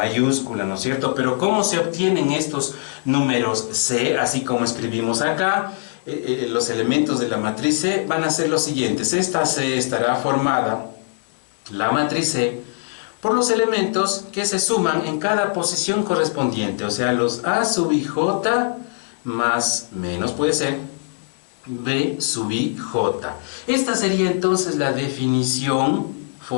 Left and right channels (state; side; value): silent; right; digital silence